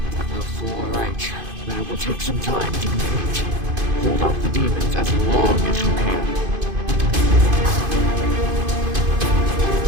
All right, but it will take some time to complete. Hold off the demons as long as you can.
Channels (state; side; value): late; left; 2.5 ms